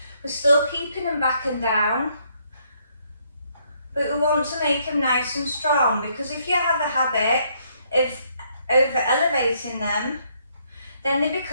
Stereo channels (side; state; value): both; inverted; correlation -0.70